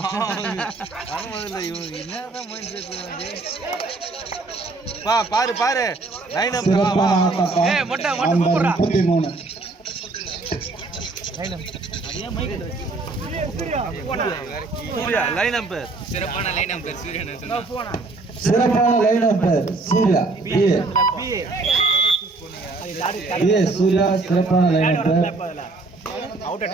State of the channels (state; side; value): quieter; left; 3.5 dB